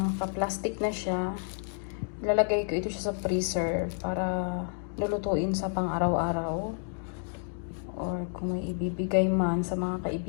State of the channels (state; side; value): silent; right; 58 dB below the other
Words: na siya. Ilalagay ko ito siya sa freezer para lulutuin sa pang-araw-araw. Or kung may ibibigay man sa mga